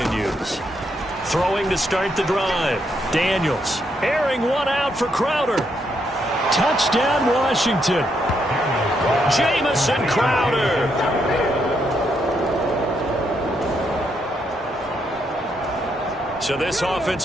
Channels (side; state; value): both; normal; correlation 0.77